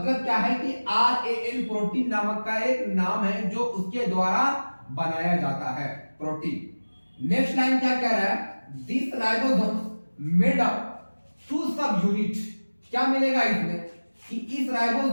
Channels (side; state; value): both; inverted; correlation -1.00